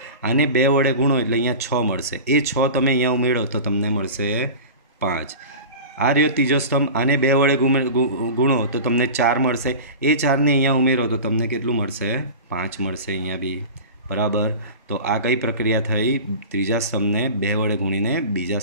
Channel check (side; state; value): both; inverted; correlation -0.33